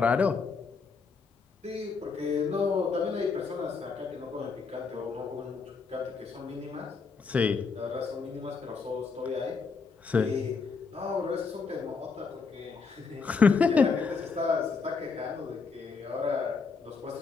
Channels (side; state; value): right; quieter; 4.9 dB